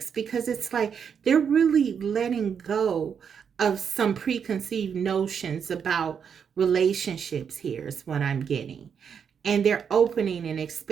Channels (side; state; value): left; quieter; 7.2 dB